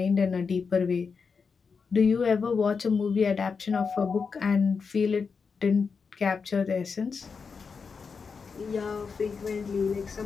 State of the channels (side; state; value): right; quieter; 5.4 dB